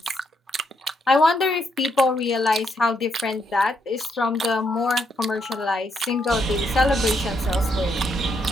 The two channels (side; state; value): both; normal; correlation 0.77